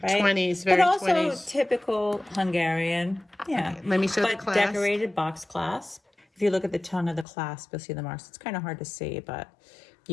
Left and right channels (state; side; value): drops out; right; at 7.2 s